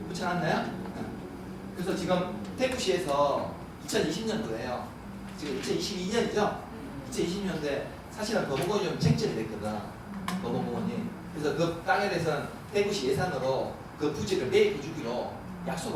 붙여놨나요? 그래서 지금 대구시에서 2020년도에요. 지금 2022년이죠? 2020년도에 사실은 범어공원이 좀 쟁점이 됐거든. 범어공원이. 그래서 그 땅에 대해서는 대구시 예산으로 그 부지를 매입해 주기로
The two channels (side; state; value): both; identical; correlation 1.00